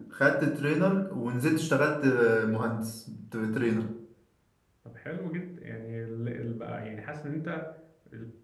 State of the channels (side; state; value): both; identical; correlation 1.00